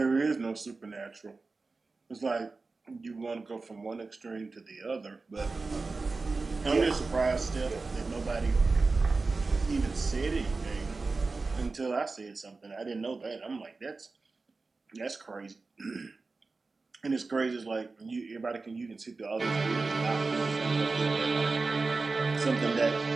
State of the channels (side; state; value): left; quieter; 3.9 dB